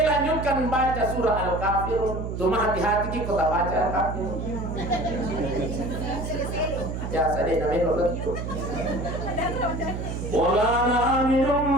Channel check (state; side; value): noise; right; hum, 5 dB below the sound